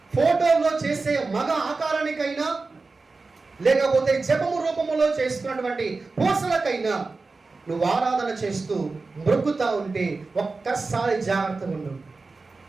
ఫోటోలో చేసే మగ ఆకారానికైనా, లేకపోతే జపము రూపములో చేసుకున్నటువంటి పూసలకైనా నువ్వు ఆరాధన చేస్తూ మొక్కుతా ఉంటే ఒక్కసారి జాగ్రత్తగా ఉండు.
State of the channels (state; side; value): quieter; left; 3.9 dB